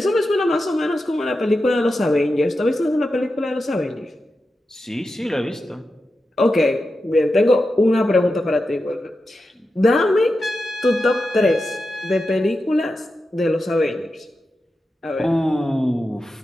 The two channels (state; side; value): normal; both; correlation 0.90